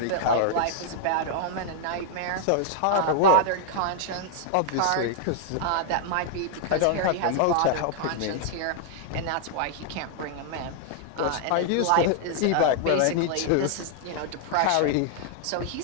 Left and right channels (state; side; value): different; both; correlation 0.00